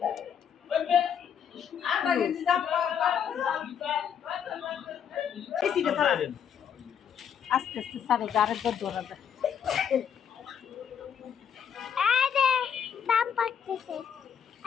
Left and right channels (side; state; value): right; quieter; 8.1 dB